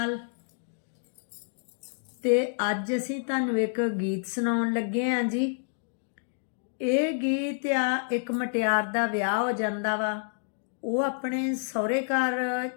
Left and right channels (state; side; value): silent; right; digital silence